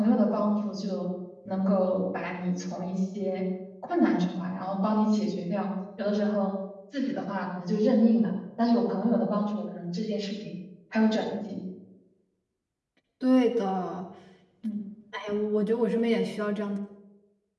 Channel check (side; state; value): both; identical; correlation 1.00